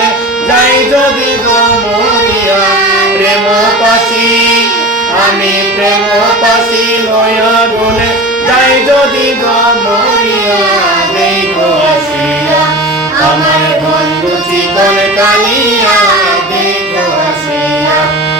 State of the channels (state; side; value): normal; both; correlation 0.33